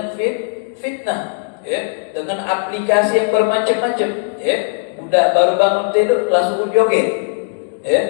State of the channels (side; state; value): right; silent; digital silence